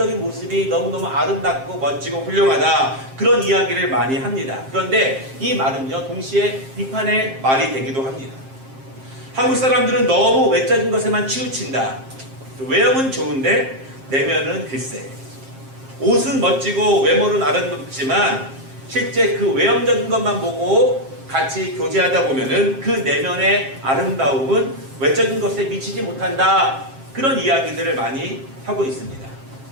모습이 너무너무 아름답고 멋지고 훌륭하다. 그런 이야기를 많이 합니다. 그런데 이 말은요, 동시에 비판의 말이 되기도 합니다. 한국 사람들은 너무 외적인 것에만 치우친다. 외형은 좋은데 내면은 글쎄. 옷은 멋지고 외모는 아름답지만 실제 그 외형적인 것만 보고 같이 교제하다 보면은 그 내면의 아름다움은 외적인 것에 미치지 못한다. 그런 이야기들을 많이 하고 있습니다.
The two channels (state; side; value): late; left; 7.5 ms